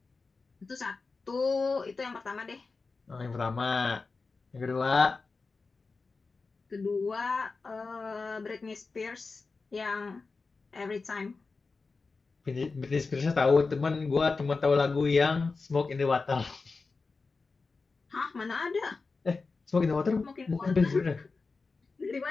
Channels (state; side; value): quieter; right; 4.2 dB